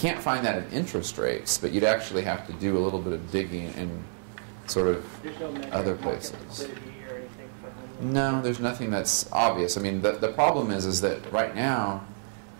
find that in interest rates, but you'd actually have to do a little bit of digging in sort of There's no measure other of market places. liquidity or anything for home loans? No, there's nothing that's obvious. I mean, the problem is that right now,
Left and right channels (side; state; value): left; silent; digital silence